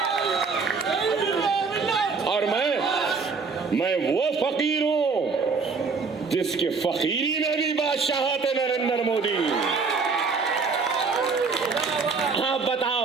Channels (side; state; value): left; quieter; 4.8 dB